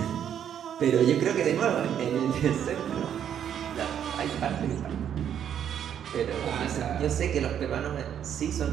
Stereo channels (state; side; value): quieter; left; 9.2 dB